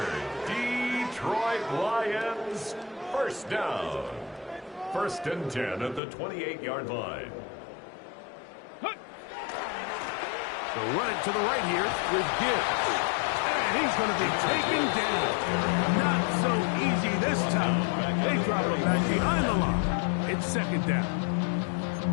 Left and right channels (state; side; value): drops out; right; at 6.0 s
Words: Detroit Lions first down. First and 10 at the 28-yard line. They'll run it to the right here with Gibbs. And he's going to be taken down. Not so easy this time. They drop him back behind the line. It's second down.